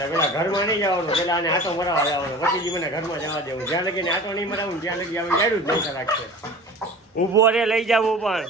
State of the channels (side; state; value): both; normal; correlation 0.39